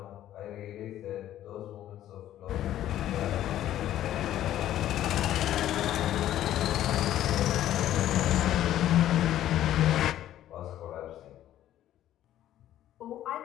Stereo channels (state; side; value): quieter; right; 12.5 dB